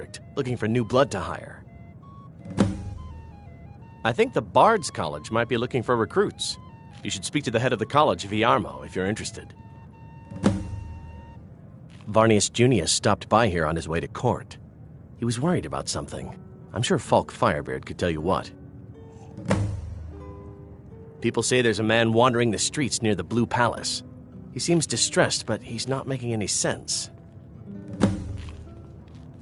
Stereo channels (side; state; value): both; identical; correlation 1.00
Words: looking for new blood to hire. I think the Bard's College might be looking for recruits. You should speak to the head of the college, Viarmo, if you're interested. Varnius Junius stopped by here on his way to court. He was worried about something. I'm sure Falk Firebeard could tell you what. People say there's a man wandering the streets near the Blue Palace. He seems distressed, but he's not making any sense.